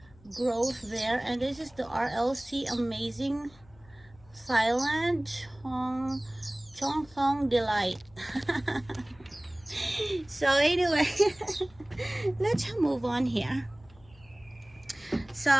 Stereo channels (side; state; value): left; noise; hum, 26 dB below the sound